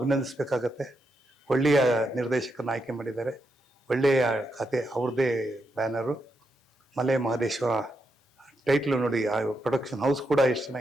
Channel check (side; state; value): both; normal; correlation 0.83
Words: ಒಳ್ಳೆಯ ನಿರ್ದೇಶಕರನ್ನ ಆಯ್ಕೆ ಮಾಡಿದ್ದಾರೆ. ಒಳ್ಳೆಯ ಕತೆ, ಅವ್ರದ್ದೇ ಬ್ಯಾನರು. ಮಲೆ ಮಹದೇಶ್ವರ ಟೈಟ್ಲು ನೋಡಿ. ಆ ಪ್ರೊಡಕ್ಷನ್ ಹೌಸ್ ಕೂಡ ಎಷ್ಟು